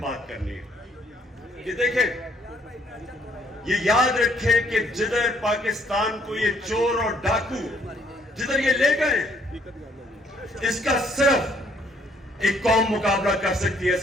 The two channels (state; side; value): normal; both; correlation 0.66